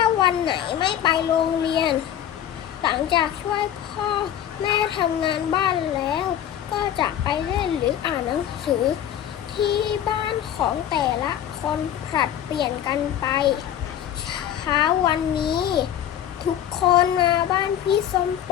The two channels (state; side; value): quieter; right; 10.6 dB